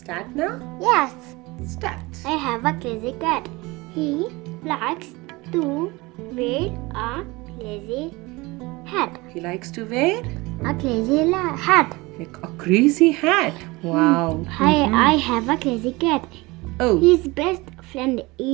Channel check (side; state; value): left; quieter; 23.0 dB